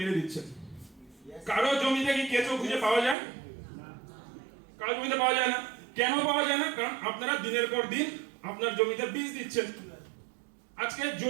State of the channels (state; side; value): drops out; left; at 3.2 s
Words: দিচ্ছেন। কারো জমিতে কি কেঁচো খুঁজে পাওয়া যায়? কারো জমিতে পাওয়া যায় না। কেন পাওয়া যায় না? কারণ আপনারা দিনের পর দিন আপনার জমিতে বীজ দিচ্ছেন। আজকে